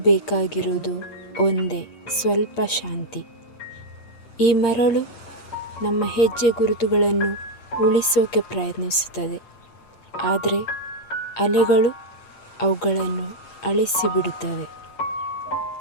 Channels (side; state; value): right; late; 8.7 ms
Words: ಬೇಕಾಗಿರುವುದು ಒಂದೇ, ಸ್ವಲ್ಪ ಶಾಂತಿ. ಈ ಮರಳು ನಮ್ಮ ಹೆಜ್ಜೆ ಗುರುತುಗಳನ್ನು ಉಳಿಸೋಕೆ ಪ್ರಯತ್ನಿಸುತ್ತದೆ, ಆದರೆ ಅಲೆಗಳು ಅವುಗಳನ್ನು ಅಳಿಸಿಬಿಡುತ್ತವೆ.